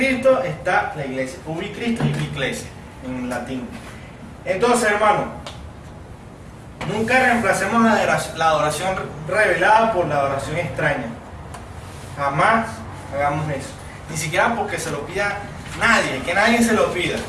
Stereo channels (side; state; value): both; identical; correlation 1.00